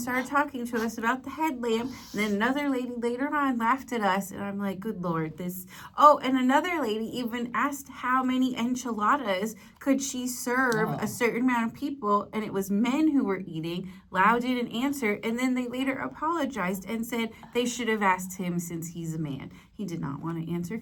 talking to us about the headlamp. And then another lady later on laughed at us. And I'm like, good Lord, this. Oh, and another lady even asked how many enchiladas could she serve a certain amount of people, and it was men who were eating. Lau didn't answer, and then they later apologized and said they should have asked him since he's a man. He did not want to answer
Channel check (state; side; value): identical; both; correlation 1.00